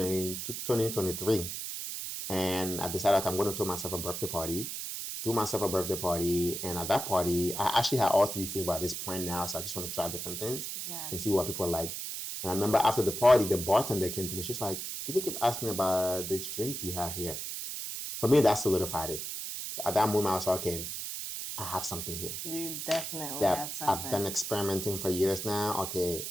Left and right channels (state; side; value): noise; right; hiss, 5 dB below the sound